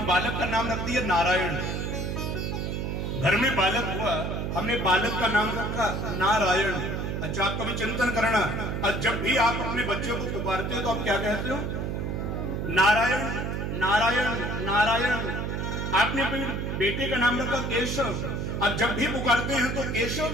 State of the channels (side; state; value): right; noise; hum, 2 dB below the sound